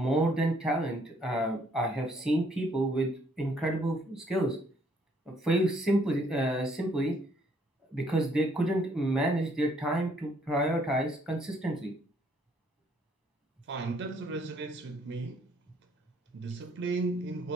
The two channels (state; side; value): normal; both; correlation 0.66